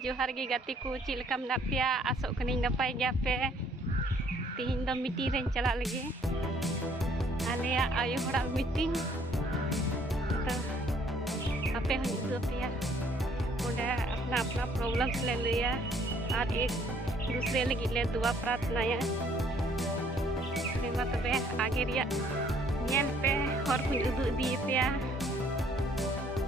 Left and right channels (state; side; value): normal; both; correlation 0.62